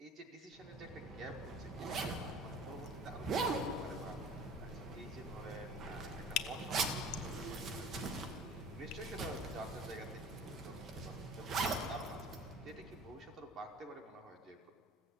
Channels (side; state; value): both; normal; correlation 0.43